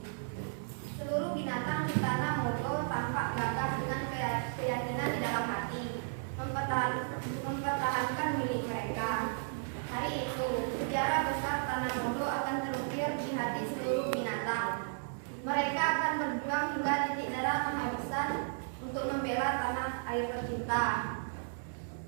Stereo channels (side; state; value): left; silent; digital silence